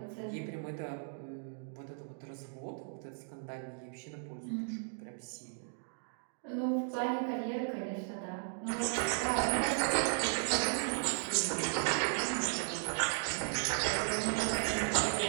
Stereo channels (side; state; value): left; silent; digital silence